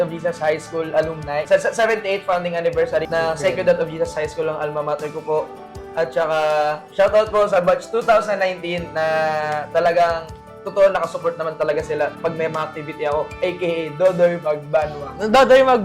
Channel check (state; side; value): identical; both; correlation 1.00